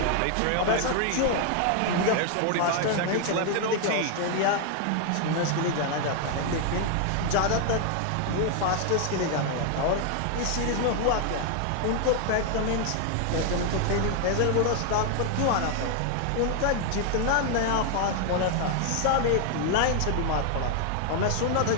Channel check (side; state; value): both; different; correlation 0.00